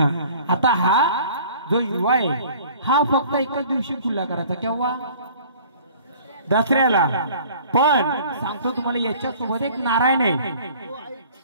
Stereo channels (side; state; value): both; inverted; correlation -0.50